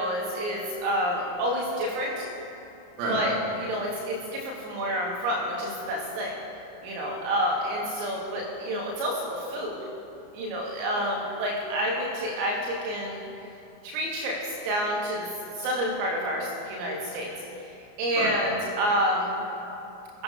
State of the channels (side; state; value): left; late; 34 ms